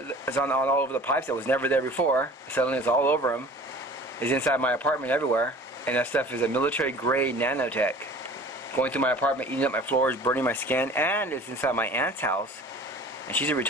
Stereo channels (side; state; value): both; normal; correlation 0.44